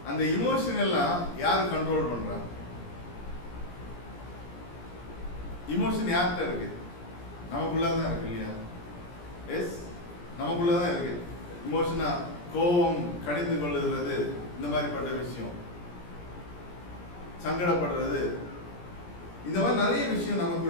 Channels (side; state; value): right; late; 17 ms